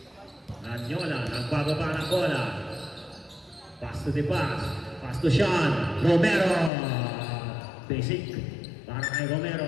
Ranyola. Nagbababa ng bola. Pass to the pass. Pass to Sean. Romero. Basic. Para kay Romero.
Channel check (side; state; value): right; drops out; at 6.7 s